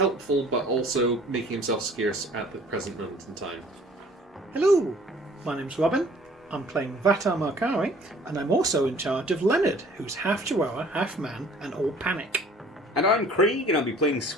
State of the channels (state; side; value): normal; both; correlation 0.53